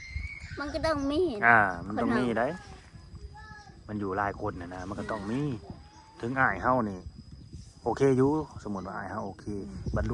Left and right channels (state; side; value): identical; both; correlation 1.00